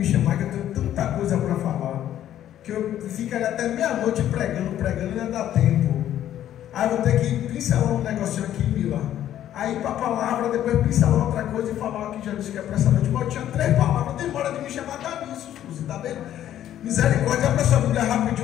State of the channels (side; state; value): right; quieter; 11.6 dB